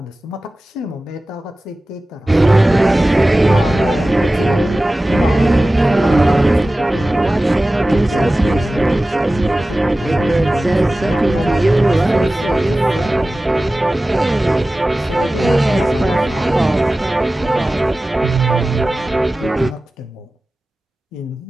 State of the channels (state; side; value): normal; both; correlation 0.96